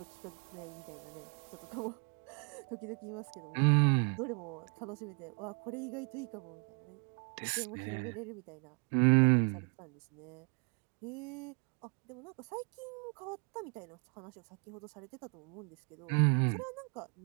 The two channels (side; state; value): left; quieter; 37.2 dB